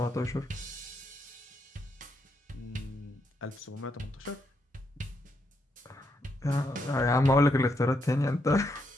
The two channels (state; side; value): normal; both; correlation 0.79